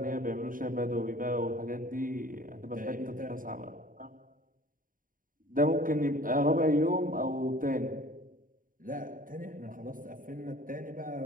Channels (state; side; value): late; left; 0.40 ms